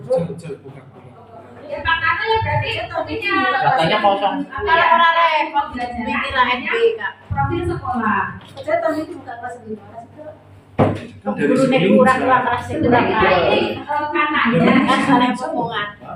Ya Pak Narno ya berarti punya. Datanya kosong. Kalau orang repot belajarnya profil sekolah. Saya tahun itu bukan kelas 5. Gurunya kurang kelas ini katanya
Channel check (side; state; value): both; identical; correlation 1.00